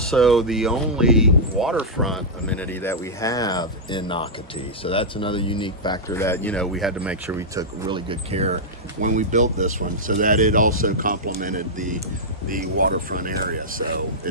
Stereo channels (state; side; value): normal; both; correlation -0.08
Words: the only waterfront amenity that we have in Nocatee. So that's another unique factor that, you know, we had to make sure we took really good care when we built this one, so that it also complemented the waterfront area. So